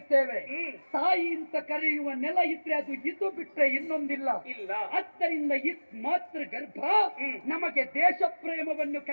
ತಾಯಿ ಅಂತ ಕರೆಯುವ ನೆಲ ಇದ್ರೆ ಅದು ಇದು ಬಿಟ್ರೆ ಇನ್ನೊಂದಿಲ್ಲ. ಆದ್ದರಿಂದ ಮಾತೃ ಗರ್ಭ ನಮಗೆ ದೇಶ ಪ್ರೇಮವನ್ನು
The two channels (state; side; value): inverted; both; correlation -1.00